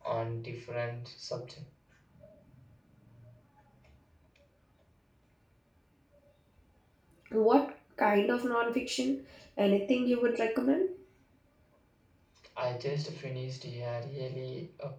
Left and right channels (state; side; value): identical; both; correlation 1.00